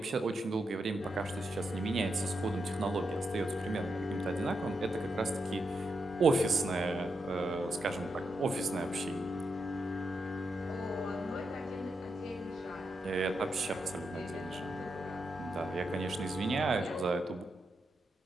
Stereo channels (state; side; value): normal; both; correlation 0.84